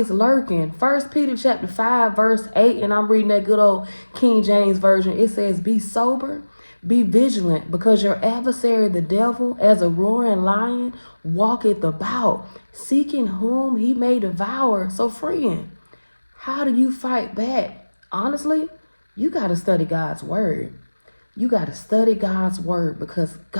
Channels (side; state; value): both; inverted; correlation -1.00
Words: lurking. First Peter chapter 5, verse 8, and I'm reading that good old King James Version. It says, be sober, be vigilant, because your adversary, the devil, as a roaring lion, walketh about, seeking whom he may devour. So, friend, how do you fight back? Honestly, you got to study God's word. You got to study God's word, because